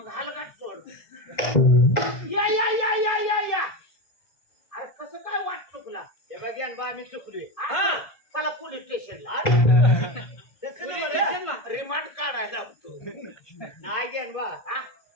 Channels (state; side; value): late; right; 1.7 ms